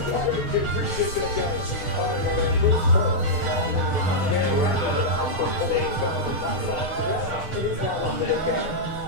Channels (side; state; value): right; late; 6.5 ms